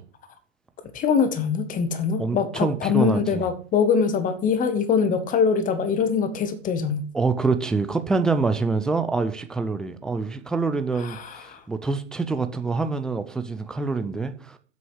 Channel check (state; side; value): normal; both; correlation 0.44